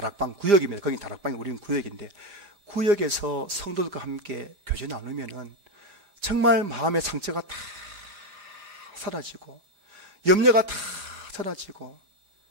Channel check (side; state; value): left; late; 5.0 ms